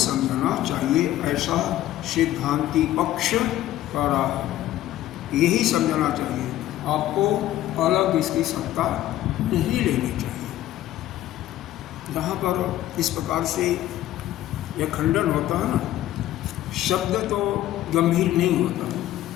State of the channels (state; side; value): quieter; right; 13.8 dB